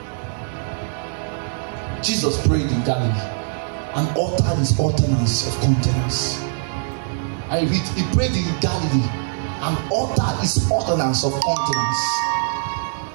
Jesus prayed in Galilee and uttered his ordinance of countenance. I read, he prayed in Galilee and uttered his ordinance of countenance.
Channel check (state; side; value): silent; left; 64 dB below the other